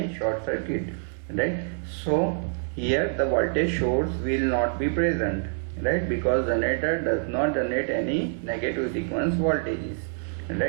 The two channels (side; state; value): left; silent; digital silence